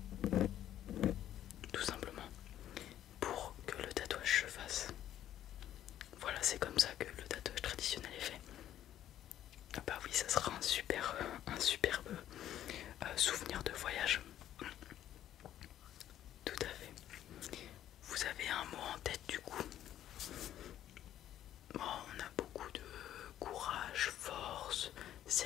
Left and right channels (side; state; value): right; quieter; 11.7 dB